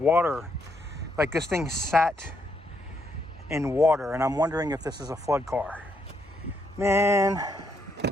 Like this thing sat in water, and I'm wondering if this is a flood car. Man.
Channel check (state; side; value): normal; both; correlation 0.76